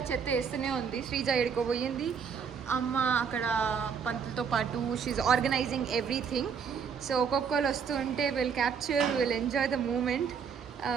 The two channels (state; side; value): quieter; left; 6.6 dB